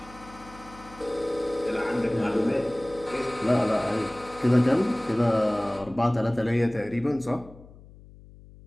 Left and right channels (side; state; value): left; noise; hum, 21 dB below the sound